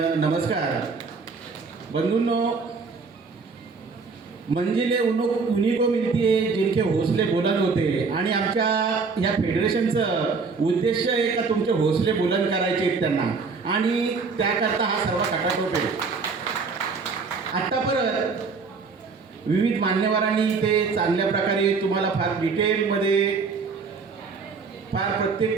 नमस्कार. बंधूंनो, मंजिले उन्हीं को मिलती है जिनके हौसले बुलंद होते. आणि आमच्या ह्या फेडरेशनचं उद्देश आहे का तुमचे हौसले बुलंद करायचे आहेत त्यांना, आणि त्याकरता हा सर्व खटाटोप आहे. आत्ता परत विविध मान्यवरांनी ते चांगल्या प्रकारे तुम्हाला फार डिटेलमध्ये फार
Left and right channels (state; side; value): quieter; left; 4.7 dB